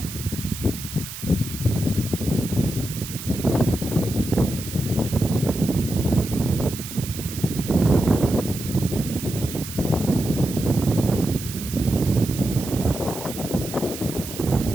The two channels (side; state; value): right; noise; hiss, 10 dB below the sound